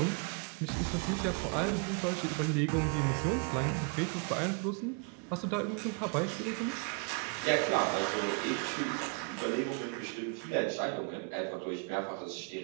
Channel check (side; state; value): left; quieter; 35.0 dB